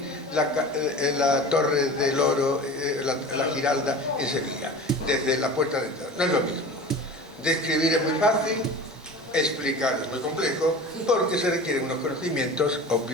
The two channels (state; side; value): normal; both; correlation 0.36